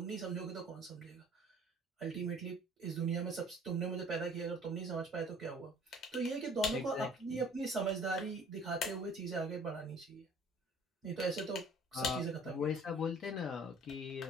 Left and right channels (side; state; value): both; normal; correlation 0.52